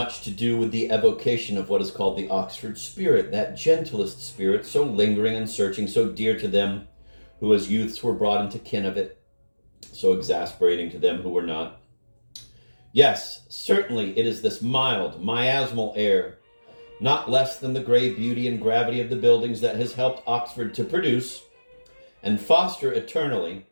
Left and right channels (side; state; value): both; inverted; correlation -1.00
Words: to do with the evocation of what is called the Oxford spirit, that gentlest spirit, so lingering and searching, so dear to them who as youths were brought into kin of it, so exasperating to them who were not. Yes, certainly it is this mild, miasmal air, not less than the gray beauty and gravity of the buildings, that has helped Oxford to produce and foster eternally